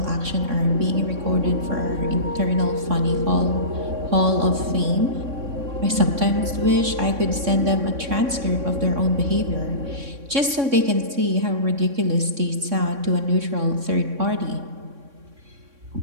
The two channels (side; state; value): left; late; 3.6 ms